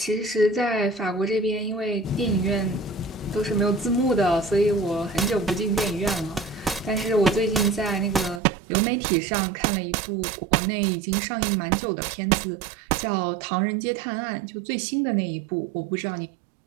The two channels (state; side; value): drops out; left; at 8.4 s